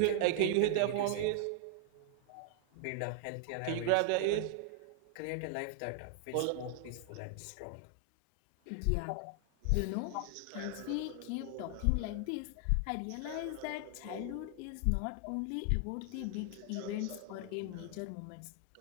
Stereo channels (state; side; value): different; both; correlation 0.00